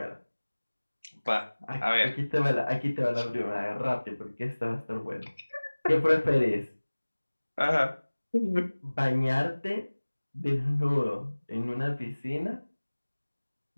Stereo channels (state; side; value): inverted; both; correlation -1.00